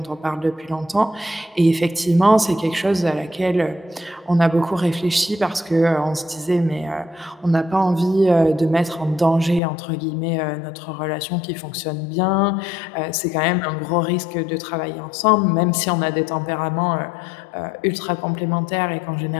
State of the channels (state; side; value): drops out; right; at 9.6 s